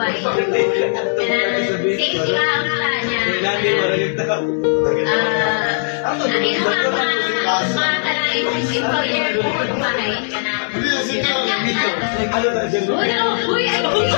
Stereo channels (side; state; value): right; silent; 66 dB below the other